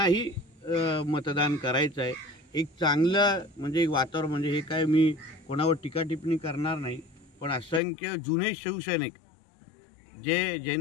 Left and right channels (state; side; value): drops out; right; at 7.8 s